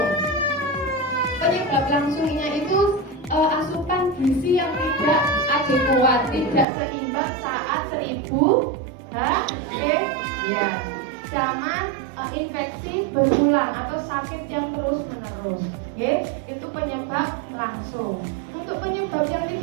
Penyebab langsungnya itu asupan gizi yang tidak adekuat, tidak seimbang saat 1000 ya, sama infeksi berulang atau sakit yang terus menerus, itu penyebab langsung. Untuk penyebab yang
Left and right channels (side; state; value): left; drops out; at 6.7 s